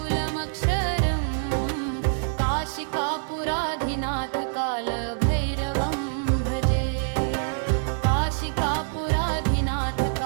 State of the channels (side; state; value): left; silent; 61 dB below the other